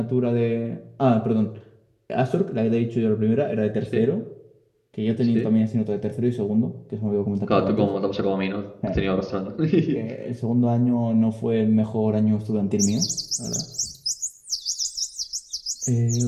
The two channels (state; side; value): identical; both; correlation 1.00